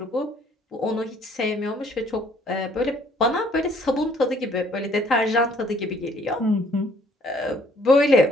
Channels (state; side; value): normal; both; correlation 0.61